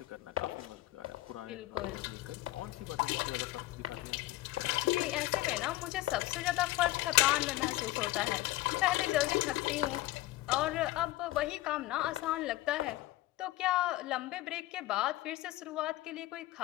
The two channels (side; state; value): right; quieter; 17.4 dB